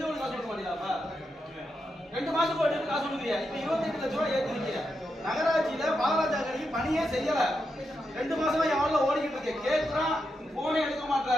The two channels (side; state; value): both; normal; correlation 0.85